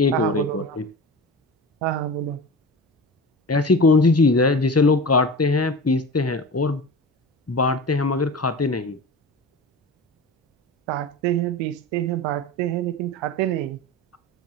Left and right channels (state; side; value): normal; both; correlation 0.31